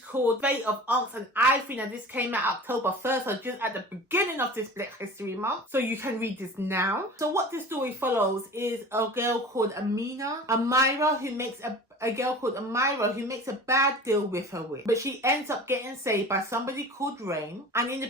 Fate of ONYX and IVORY. Now, this came out October 1st, so just at the beginning of this Black History Month. So you can read this now. So what this story follows is a girl called Amira, who makes a bad deal with her witch. But she ends up getting saved by somebody called Rain, and in the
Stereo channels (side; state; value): both; normal; correlation 0.38